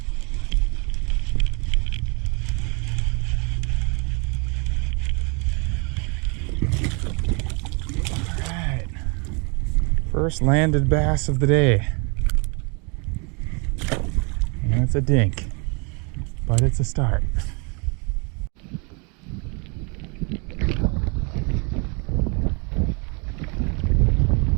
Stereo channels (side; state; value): left; quieter; 33.5 dB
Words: First landed bass of the day. And it's a dink, but it's a start.